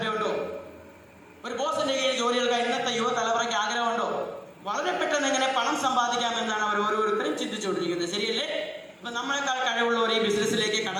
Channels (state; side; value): identical; both; correlation 1.00